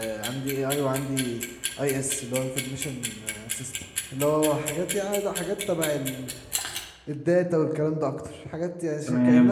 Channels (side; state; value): both; identical; correlation 1.00